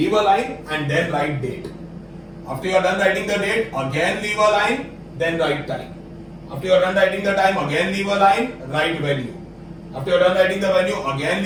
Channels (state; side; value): identical; both; correlation 1.00